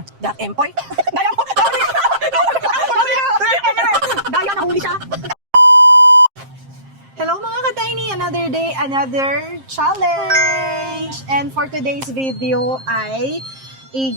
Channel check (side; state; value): left; late; 7.5 ms